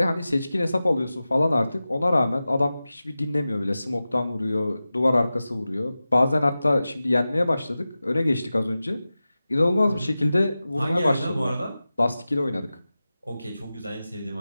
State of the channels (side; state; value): both; inverted; correlation -0.95